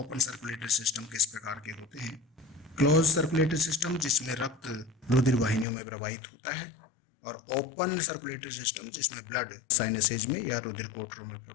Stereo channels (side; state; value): right; drops out; at 5.7 s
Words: सर्कुलेटरी सिस्टम किस प्रकार के होते हैं। क्लोज सर्कुलेटरी सिस्टम जिसमें रक्त रुधिर वाहिनियों में प्रवाहित होता है, और ओपन सर्कुलेटरी सिस्टम जिसमें ब्लड साइनसेज में या रुधिर कोटरों में